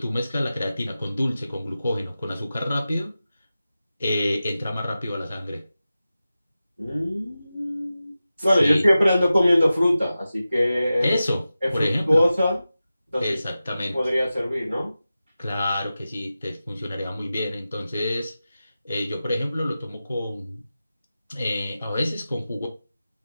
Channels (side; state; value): both; inverted; correlation -0.94